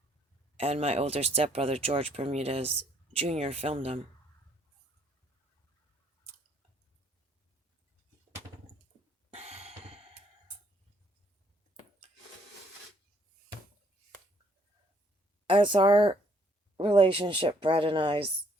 And my older stepbrother, George Bermudez Jr., filmed them. As our relationship, Brad and I's,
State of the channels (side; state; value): both; normal; correlation 0.66